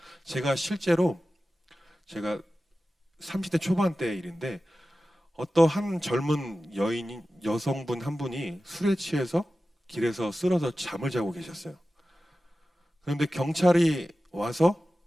제가 실제로 제가 30대 초반대 일인데 어떠한 젊은 여성분 한 분이 술에 취해서 길에서 쓰러져 잠을 자고 계셨어요. 그런데 경찰이 와서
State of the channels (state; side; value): normal; both; correlation 0.95